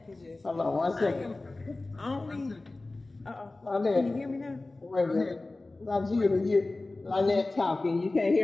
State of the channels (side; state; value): right; quieter; 3.1 dB